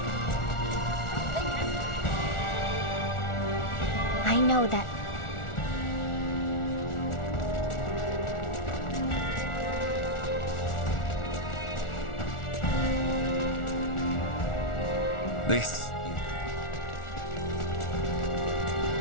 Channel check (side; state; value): right; late; 1.4 ms